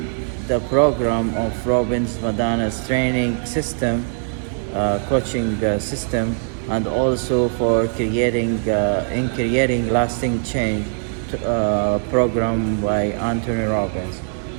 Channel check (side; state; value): left; silent; 65 dB below the other